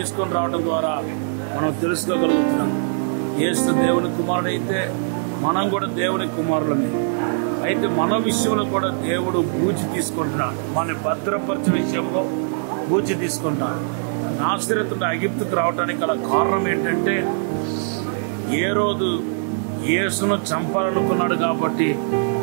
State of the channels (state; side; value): silent; left; 59 dB below the other